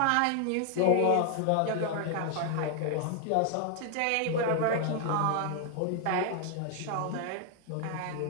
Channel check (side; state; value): both; different; correlation 0.00